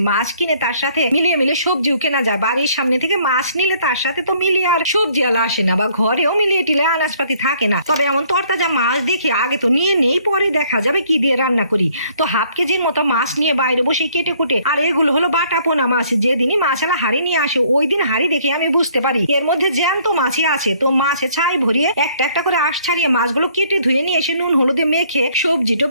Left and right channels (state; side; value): inverted; both; correlation -0.62